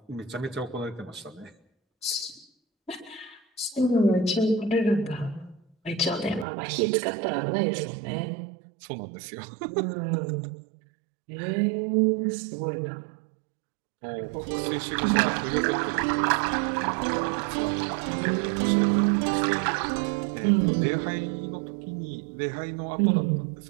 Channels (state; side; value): drops out; left; at 6.5 s